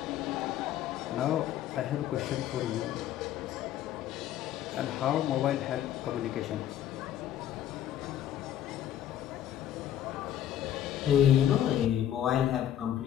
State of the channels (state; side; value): quieter; right; 11.2 dB